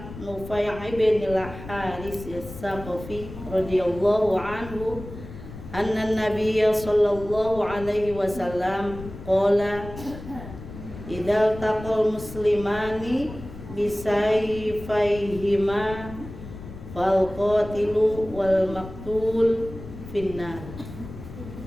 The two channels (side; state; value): left; noise; rumble, 13 dB below the sound